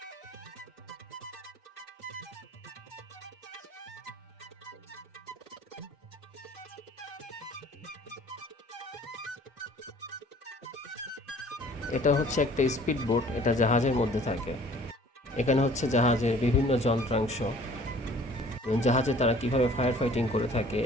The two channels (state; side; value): normal; both; correlation 0.52